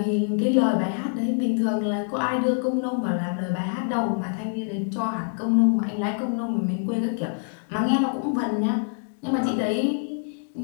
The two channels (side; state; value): right; silent; 60 dB below the other